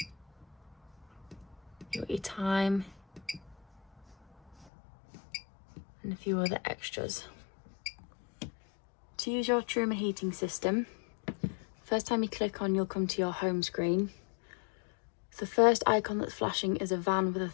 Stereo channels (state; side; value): drops out; right; at 4.7 s